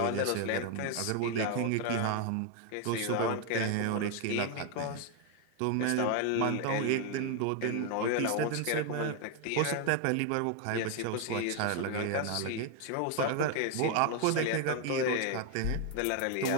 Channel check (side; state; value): both; different; correlation 0.01